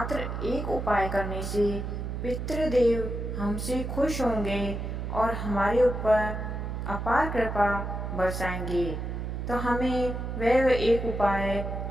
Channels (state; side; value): noise; right; hum, 4 dB below the sound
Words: एक उपाय करने से पितृदेव हमसे खुश होंगे और हमारे ऊपर अपार कृपा बरसाएंगे। तो हमें वह एक उपाय